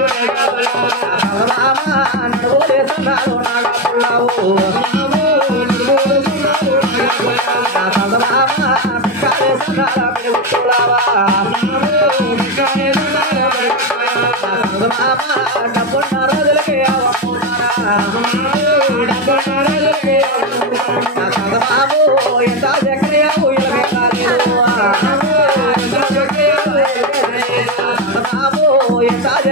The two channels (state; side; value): normal; both; correlation 0.11